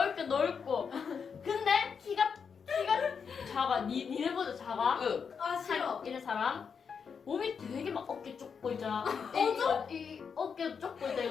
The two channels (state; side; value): quieter; right; 6.3 dB